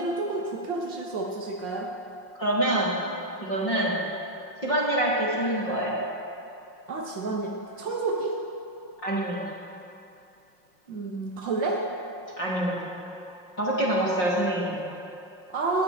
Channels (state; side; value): late; right; 5.5 ms